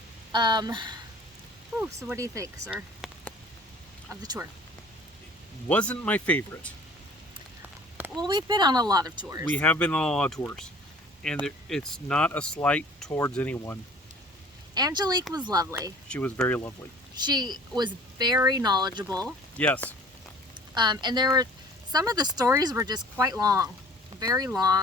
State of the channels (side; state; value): both; normal; correlation 0.49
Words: So what do you think, sir, of the tour? Wasn't my favorite. Well, we've been on a lot of tours. We have been on a lot of tours. And it's not a slight towards anyone. Angelique was lovely. She was very lovely. She was very knowledgeable. Yes. And there were, some of the stories were just quite long. Very